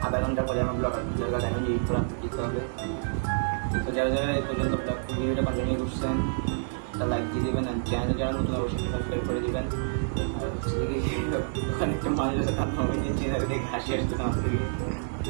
আধা ঘন্টা পরে আমার ব্লগ এখন এডিট করে আপলোড দিতে হবে। তো যারা এই পর্যন্ত ব্লগ ভিডিওটা কন্টিনিউ করছেন তা লাইক দিয়ে দেবেন, আর চ্যানেলে যারা নতুন অবশ্যই সাবস্ক্রাইব করে দেবেন। আর হচ্ছে ওখানে একটা মানুষ আছে তার নামে নিয়ে দেখে হাসি আসতেছে আমার থেকে।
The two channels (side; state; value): left; silent; 59 dB below the other